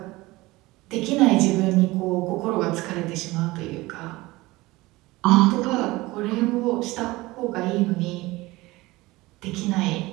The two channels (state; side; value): quieter; left; 20.4 dB